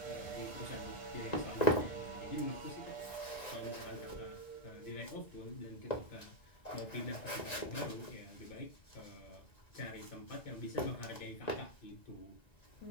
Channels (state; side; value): late; right; 1.9 ms